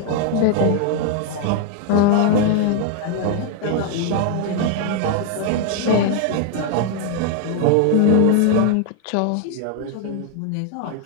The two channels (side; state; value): both; different; correlation 0.00